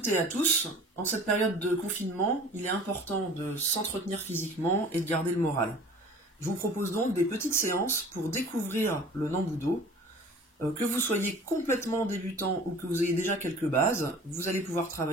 et à tous. En cette période de confinement, il est important de s'entretenir physiquement et de garder le moral. Je vous propose donc des petites séances pour découvrir le Nambudo. Que vous soyez complètement débutant ou que vous ayez déjà quelques bases, vous allez pouvoir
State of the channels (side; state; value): both; normal; correlation 0.45